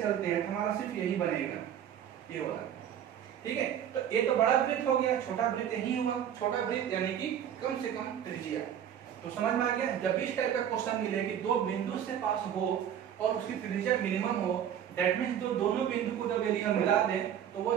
चलते हैं तो हमारा सिर्फ यही बनेगा, ये वाला। ठीक है, तो ये तो बड़ा वृत्त हो गया, छोटा वृत्त यही हुआ, छोटा वृत्त यानी कि कम से कम त्रिज्या। तो समझ में आ गया? जब भी इस टाइप का क्वेश्चन मिले कि दो बिंदु से पास हो और उसकी त्रिज्या मिनिमम हो, दैट मींस जो दोनों बिंदु को जब यदि हम मिला दें तो वो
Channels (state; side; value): quieter; left; 9.7 dB